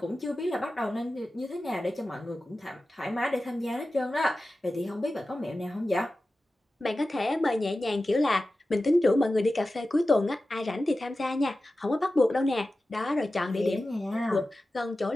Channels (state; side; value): normal; both; correlation 0.94